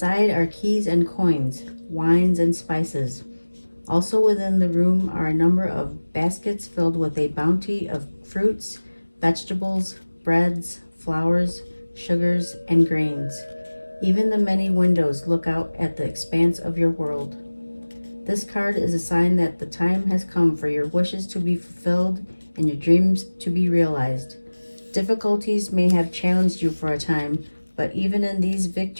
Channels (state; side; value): inverted; both; correlation -1.00